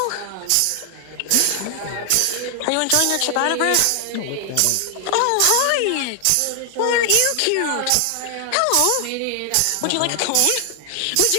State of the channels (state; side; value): different; both; correlation 0.00